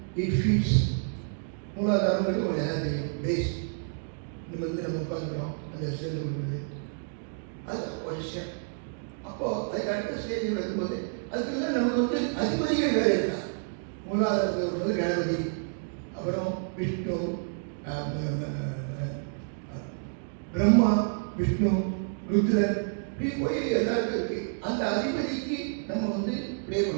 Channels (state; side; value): silent; left; digital silence